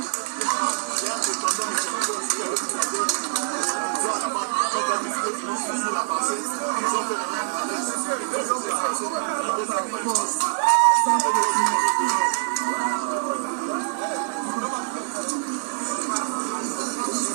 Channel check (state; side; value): silent; left; 62 dB below the other